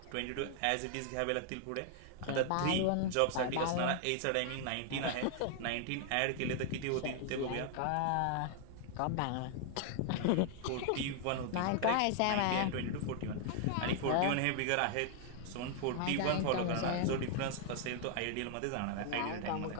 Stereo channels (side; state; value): both; different; correlation 0.00